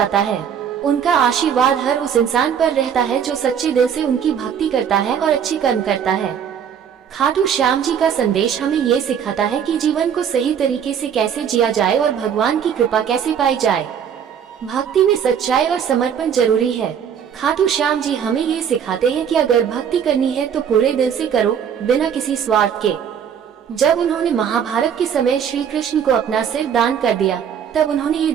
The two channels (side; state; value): left; quieter; 8.1 dB